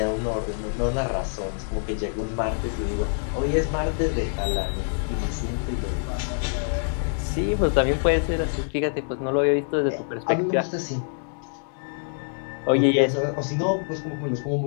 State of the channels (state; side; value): silent; right; digital silence